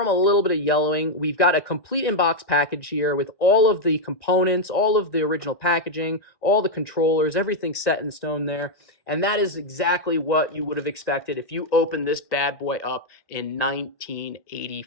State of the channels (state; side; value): late; right; 1.4 ms